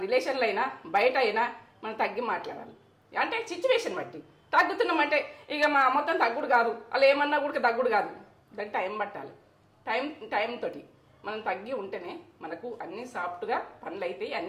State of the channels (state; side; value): identical; both; correlation 1.00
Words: రిలేషన్లో అయినా బయట అయినా మనం తగ్గి మాట్లాడాలి. అంటే సిచ్యువేషన్ బట్టి తగ్గుతున్నామంటే ఇక మొత్తం తగ్గుడు కాదు. అలా ఏమన్నా కూడా తగ్గుడు కాదు. దానికి టైం పట్టాలి. టైం తోటి మనం తగ్గి ఉంటేనే మనకు అన్నీ సాఫ్ట్గా పనులు అవుతాయి,